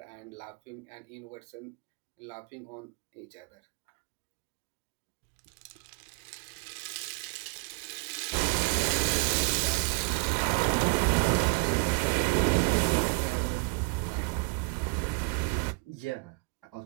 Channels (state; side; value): quieter; left; 33.9 dB